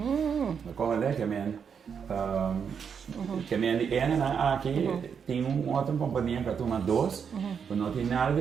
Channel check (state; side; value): quieter; left; 6.9 dB